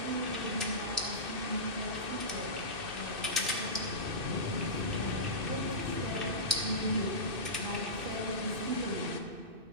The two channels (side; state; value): left; late; 2.6 ms